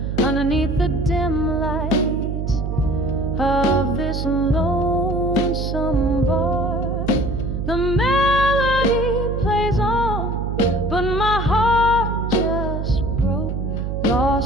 underneath the dim light of this lonesome bar. The melody plays on, but my heart just broke,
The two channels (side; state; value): right; noise; hum, 3 dB below the sound